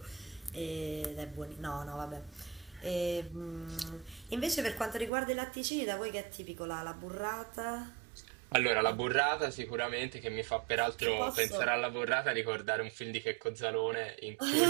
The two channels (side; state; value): left; drops out; at 5.1 s